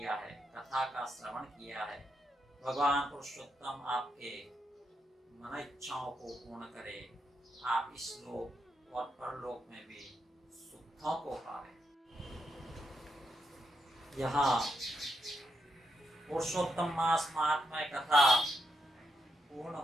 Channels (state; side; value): normal; both; correlation 0.82